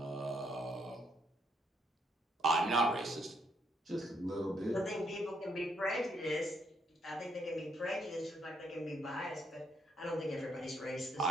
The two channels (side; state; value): both; normal; correlation 0.73